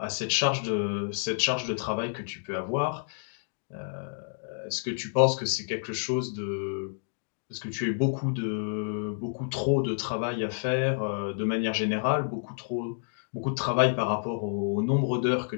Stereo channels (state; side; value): silent; right; digital silence